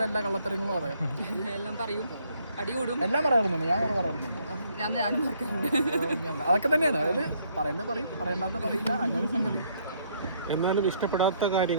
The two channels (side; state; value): both; inverted; correlation -0.68